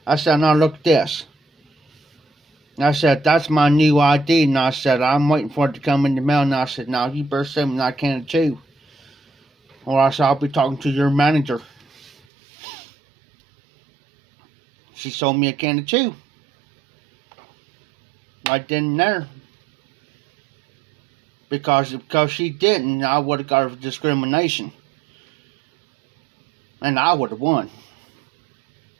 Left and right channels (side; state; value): left; drops out; at 12.1 s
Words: I said, now look at this. I said, that's my new ID. And I said, I'm waiting for it to come in the mail. And I said, now you better send me that can of chew. Or else I'll be talking to your manager. She sold me a can of chew. Right then and there. Because she didn't, I would have got discrimination. And I would have won.